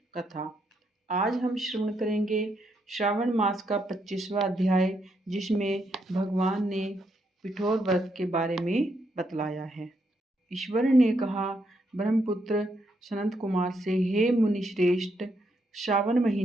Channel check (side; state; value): both; normal; correlation 0.78